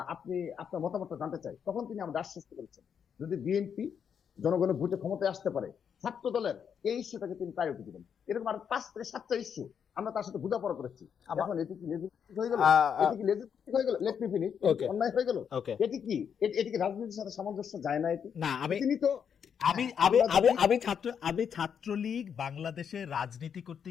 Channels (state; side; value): quieter; right; 7.6 dB